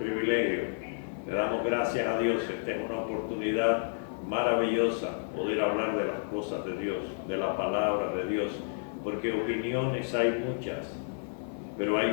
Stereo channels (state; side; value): silent; right; digital silence